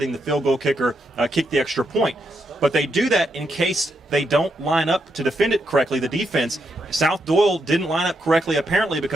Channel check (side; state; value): both; normal; correlation 0.81